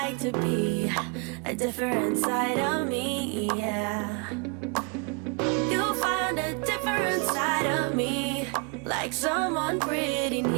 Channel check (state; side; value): quieter; left; 33.4 dB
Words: to be. A different side of me, yeah. You found a different side of me, like someone pretty